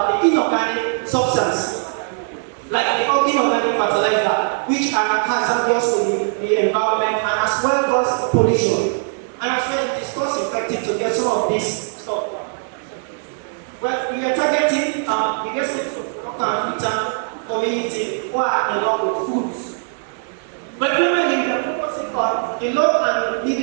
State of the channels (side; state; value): left; silent; digital silence